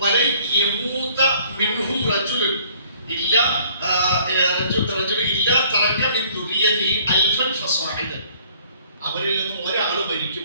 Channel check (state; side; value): inverted; both; correlation -0.58